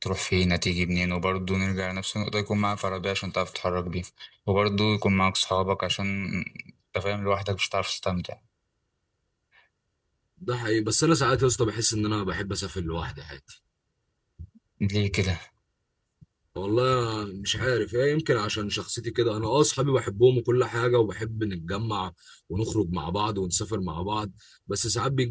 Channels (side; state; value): both; identical; correlation 1.00